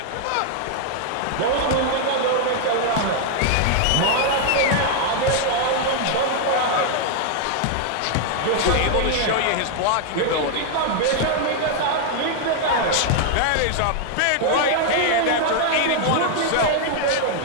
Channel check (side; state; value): both; different; correlation 0.00